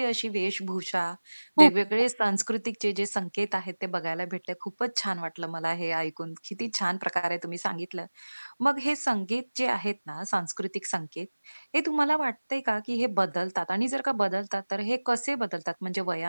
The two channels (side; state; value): both; inverted; correlation -1.00